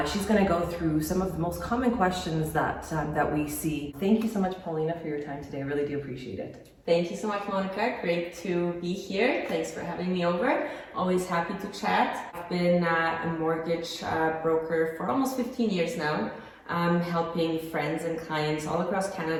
She's going to go through some of the most common questions that we see. Thank you so much, Paulina, for your time today. I really do appreciate it. Thank you so much, Monika. Great to be here. Thanks for having me over. Always happy to chat. I've been a mortgage broker for almost 15 years now, helping friends and clients all across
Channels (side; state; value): both; identical; correlation 1.00